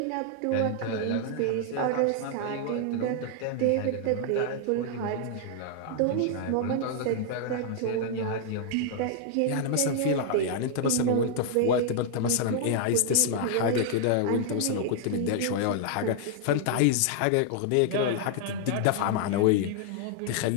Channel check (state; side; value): different; both; correlation -0.01